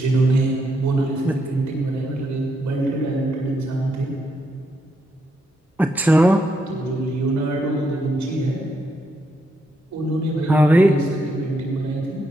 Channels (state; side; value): normal; both; correlation 0.79